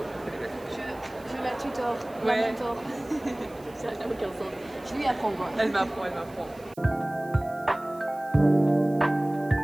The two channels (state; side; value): noise; right; hiss, 25 dB below the sound